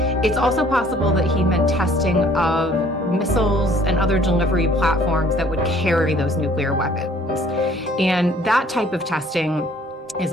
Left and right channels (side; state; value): both; normal; correlation 0.57